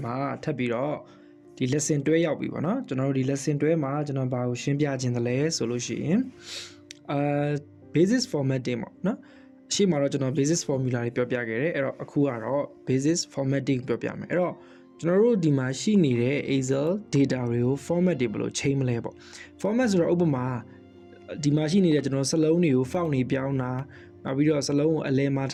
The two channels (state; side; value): identical; both; correlation 1.00